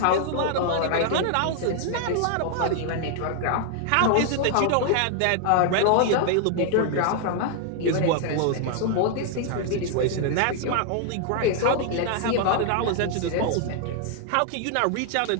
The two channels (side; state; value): both; different; correlation 0.00